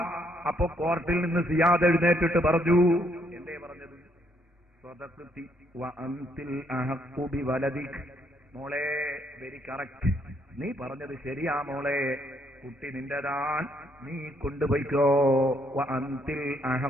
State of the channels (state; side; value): normal; both; correlation 0.71